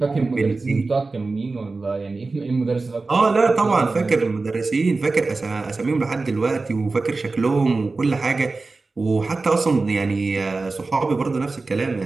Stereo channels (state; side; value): quieter; left; 3.7 dB